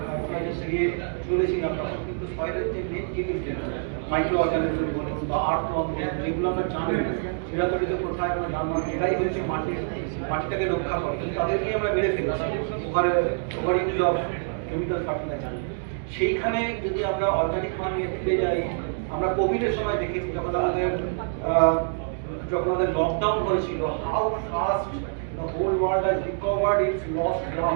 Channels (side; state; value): left; silent; digital silence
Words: দিয়ে চলেছিলাম, তখন কিন্তু সয়েলের যে মেন জিনিস মাইক্রো অর্গানিজম বলুন বা আর্থওয়ার্ম বলুন, যেগুলো আমরা জানি চিরাতরিত কোথায় আমরা জানলাম এটাই হচ্ছে মাটিটাকে রক্ষা করে, তাদেরকে আমরা মেরে ফেলেছি over use of chemical fertiliser. সেইখানে যদি আমরা অর্গানিক ফার্মিংয়ে ফিরে যাই, আমরা কোভিডের সময় দেখেছি যখন আমাদের লকডাউন হয়েছিল, how fast the whole world has recovered its lost